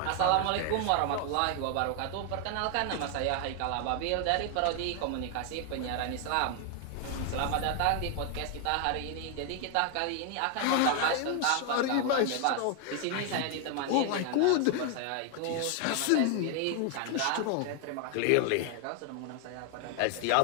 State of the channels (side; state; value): both; different; correlation 0.00